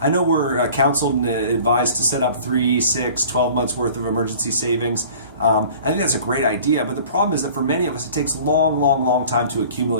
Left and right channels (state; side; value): inverted; both; correlation -0.46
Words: know we're counseled and advised to set up 3, 6, 12 months worth of emergency savings. I think that's a great idea, but the problem is that for many of us it takes long time to